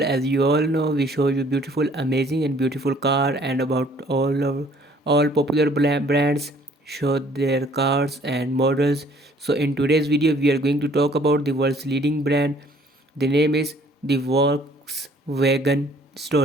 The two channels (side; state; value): both; normal; correlation 0.58